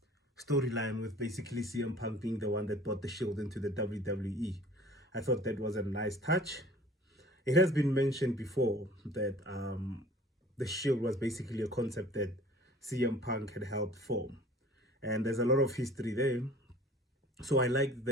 storyline with basically CM Punk being the one that brought the Shield into the WWE. I thought that was a nice touch. It has been mentioned before that the Shield was basically a concept that CM Punk had helped form. And there's a lot of history there. So I like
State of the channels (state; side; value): normal; both; correlation 0.48